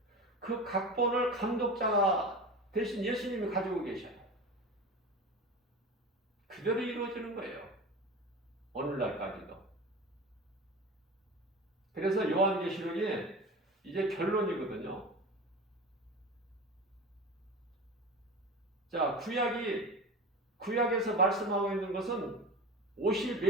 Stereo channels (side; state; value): both; normal; correlation 0.30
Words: 그 각본을 감독자 대신 예수님이 가지고 계셔요. 그대로 이루어지는 거예요. 오늘날까지도. 그래서 요한계시록이 이제 결론이거든요. 자, 구약에서 말씀하고 있는 것은 오실